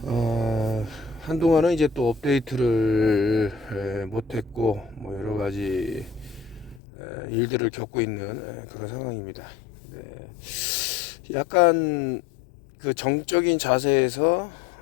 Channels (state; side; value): drops out; right; at 6.8 s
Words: 한동안은 이제 또 업데이트를 못했고 뭐 여러 가지 일들을 겪고 있는 그런 상황입니다. 네. 약간 그 정적인 자세에서